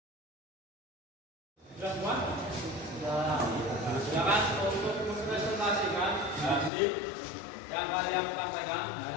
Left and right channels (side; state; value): right; drops out; at 6.7 s